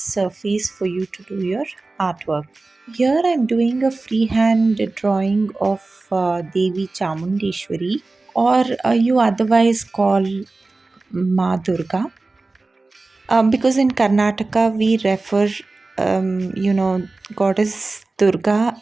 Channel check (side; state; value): left; quieter; 3.4 dB